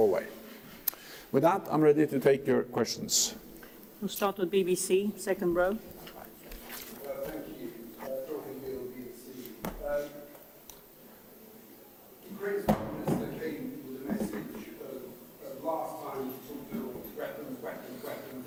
With that, I'm ready to take your questions. We'll start with BBC, second row. Ukraine's Prime Minister came with a message last time to build weapons,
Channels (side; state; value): both; identical; correlation 1.00